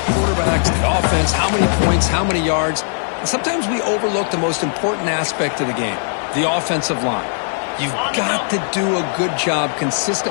quarterbacks, the offense, how many points, how many yards. And sometimes we overlook the most important aspect of the game, the offensive line. You've got to do a good job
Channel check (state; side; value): silent; right; 55 dB below the other